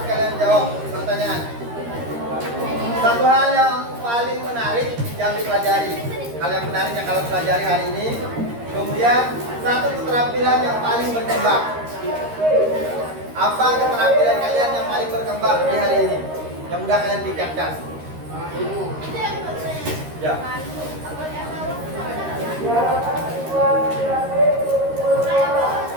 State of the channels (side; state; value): left; late; 13 ms